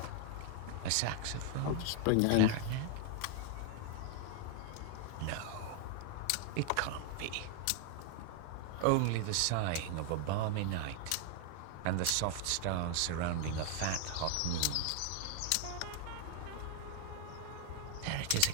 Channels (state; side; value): different; both; correlation 0.00